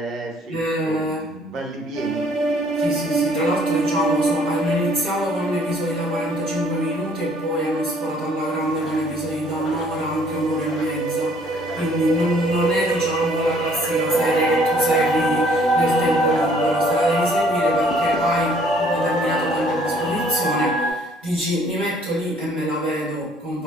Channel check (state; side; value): normal; both; correlation 0.60